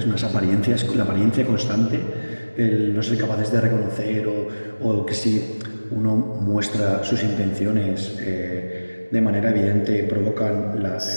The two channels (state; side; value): inverted; both; correlation -1.00